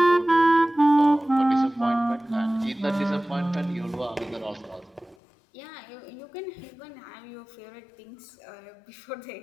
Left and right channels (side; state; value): right; drops out; at 5.2 s